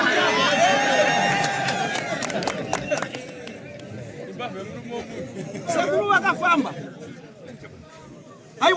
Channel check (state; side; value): identical; both; correlation 1.00